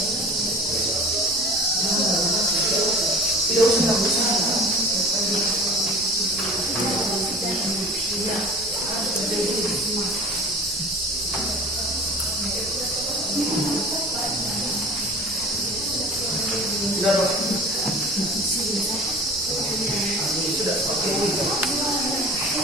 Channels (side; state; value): both; normal; correlation 0.39